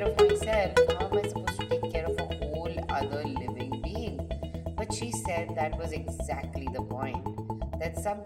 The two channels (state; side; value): identical; both; correlation 1.00